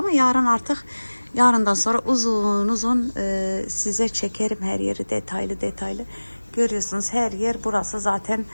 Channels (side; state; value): both; inverted; correlation -1.00